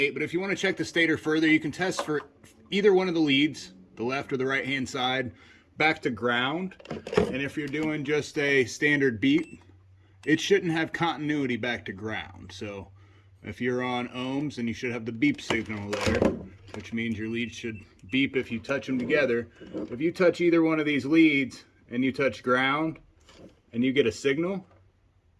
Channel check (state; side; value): identical; both; correlation 1.00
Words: but if you want to check the stator further, you can test for either one of the leads, the left or the right hand side, back to ground. And if you're doing just a standard beep, it shouldn't have continuity back to ground. So if you're on ohms, then you should have the beep signal there, which means your leads should beep if you touch them together. If you touch either one of these leads and you touch ground and you get a signal,